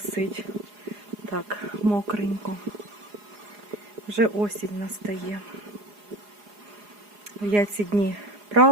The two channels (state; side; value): late; left; 4.8 ms